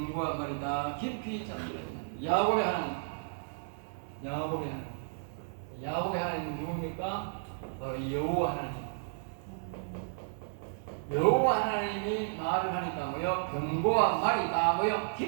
말이다 깊이 잠들었다. 야곱의 하나님, 야곱의 하나님 누굽니까? 바로 여호와 하나님. 여호와 하나님이 말을 하니까 뭐요? 병과 말이 다 뭐요?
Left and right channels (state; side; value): silent; left; digital silence